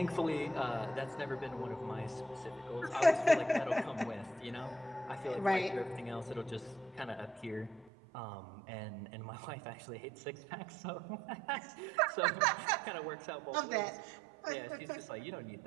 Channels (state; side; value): drops out; left; at 7.9 s